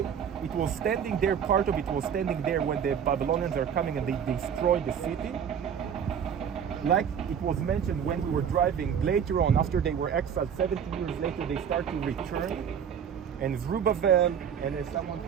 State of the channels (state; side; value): quieter; left; 8.0 dB